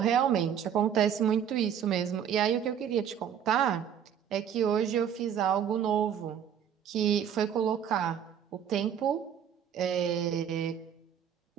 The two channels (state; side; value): quieter; left; 8.8 dB